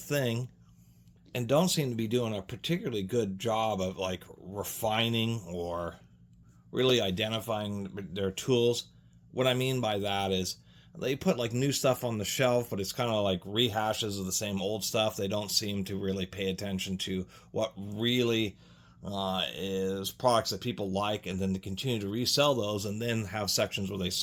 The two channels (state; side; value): identical; both; correlation 1.00